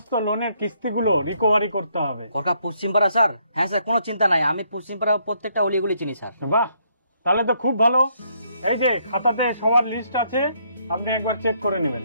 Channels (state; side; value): inverted; both; correlation -0.71